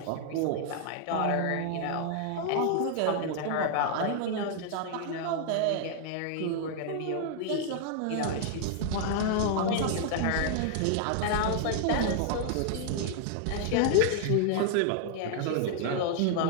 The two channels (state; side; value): different; both; correlation 0.00